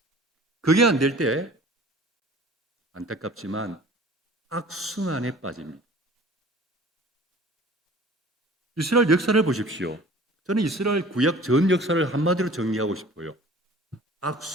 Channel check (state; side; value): normal; both; correlation 0.47